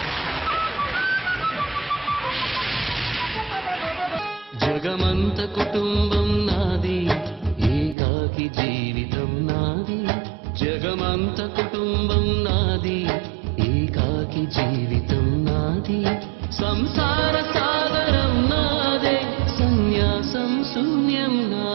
జగమంత కుటుంబం నాది, ఏకాకి జీవితం నాది. జగమంత కుటుంబం నాది, ఏకాకి జీవితం నాది. సంసార సాగరం నాదే, సన్యాసం శూన్యం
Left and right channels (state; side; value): drops out; left; at 8.0 s